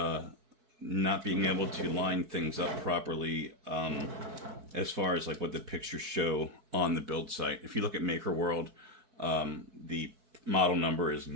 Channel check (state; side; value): late; left; 4.6 ms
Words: being able to line things up properly as far as like what the pictures show on the build site. If you look at Maker World, the model number is